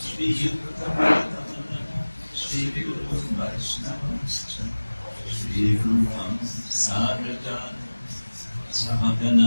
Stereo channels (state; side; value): inverted; both; correlation -1.00